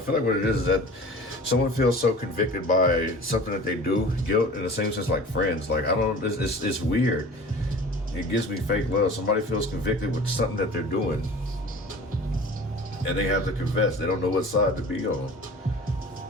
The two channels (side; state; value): both; normal; correlation 0.41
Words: like what it is that someone feels so convicted by something that they do, guilt, in the same sense like friends. Like, I don't, it's weird. It gives me fake love. Somebody feels convicted with something that they're doing, and they have to confess. They don't know what side to be on.